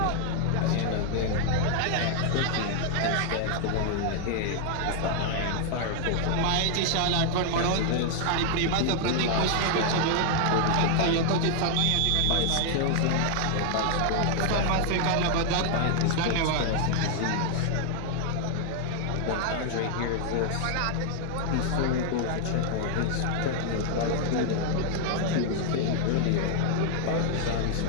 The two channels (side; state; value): both; different; correlation 0.00